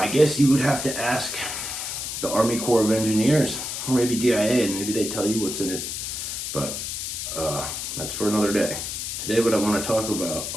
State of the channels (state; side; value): noise; left; hiss, 5 dB below the sound